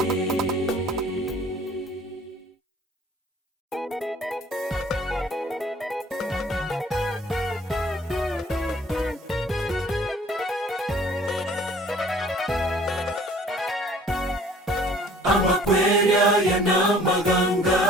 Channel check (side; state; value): both; normal; correlation 0.53